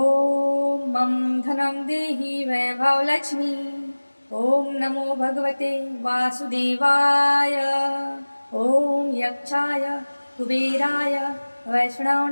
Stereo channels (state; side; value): inverted; both; correlation -1.00